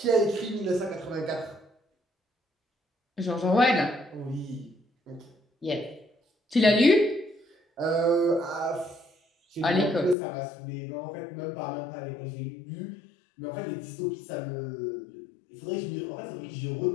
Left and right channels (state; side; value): drops out; right; at 10.2 s